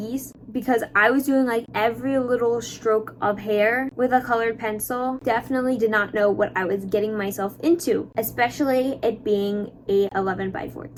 because I was doing like every little stroke of hair with a colored pencil. Definitely did not know what I was getting myself into, especially it being a 11 by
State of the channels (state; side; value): identical; both; correlation 1.00